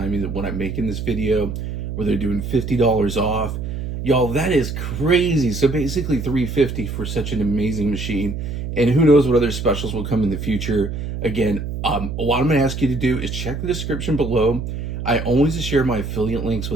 when I'm making this video, where they're doing $50 off. Y'all, that is crazy. So basically $350 for such an amazing machine. And who knows what other specials will come in the future. Again, what I'm going to ask you to do is check the description below. I always share my affiliate links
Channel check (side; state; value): right; noise; hum, 5 dB below the sound